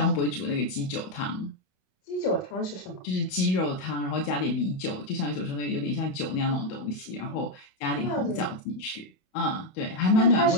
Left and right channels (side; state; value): right; late; 28 ms